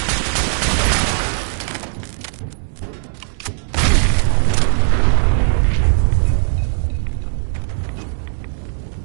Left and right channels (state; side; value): silent; left; 67 dB below the other